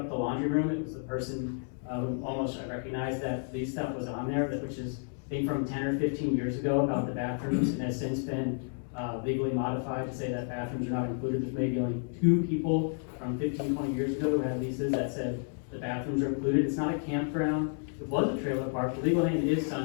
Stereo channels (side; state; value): right; silent; 57 dB below the other